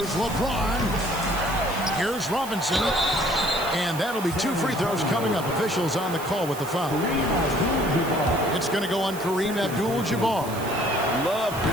LeBron. Here's Robinson. And that'll be 2 free throws coming up. Officials on the call with the foul. It's going to go on Kareem Abdul-Jabbar. Love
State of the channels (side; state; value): right; noise; hiss, 13 dB below the sound